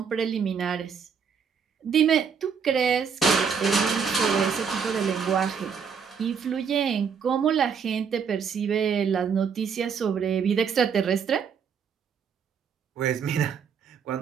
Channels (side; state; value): left; quieter; 6.6 dB